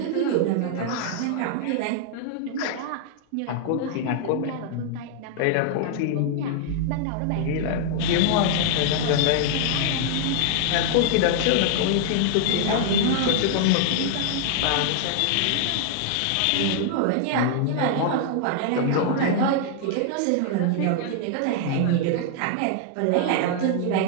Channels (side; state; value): both; different; correlation 0.00